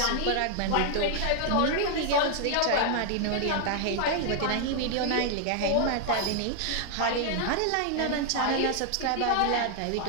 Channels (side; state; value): both; different; correlation 0.00